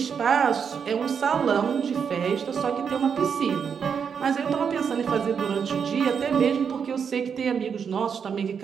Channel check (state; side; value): quieter; left; 6.8 dB